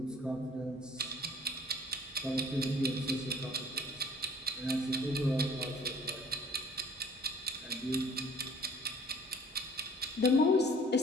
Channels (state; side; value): normal; both; correlation 0.52